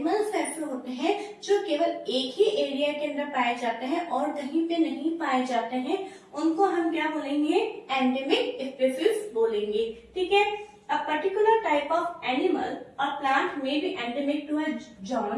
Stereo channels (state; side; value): identical; both; correlation 1.00